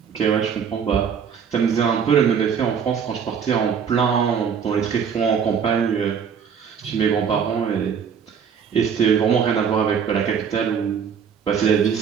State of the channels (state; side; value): quieter; left; 7.2 dB